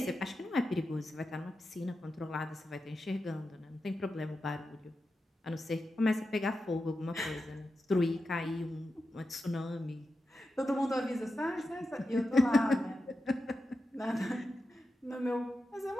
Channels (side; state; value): both; normal; correlation 0.90